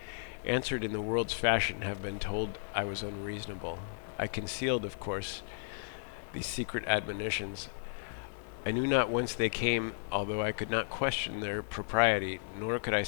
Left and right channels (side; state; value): right; silent; digital silence